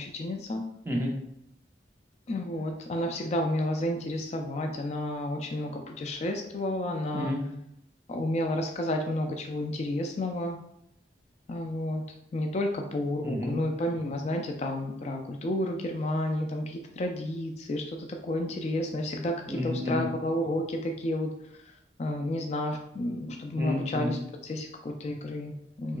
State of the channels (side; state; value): both; normal; correlation 0.66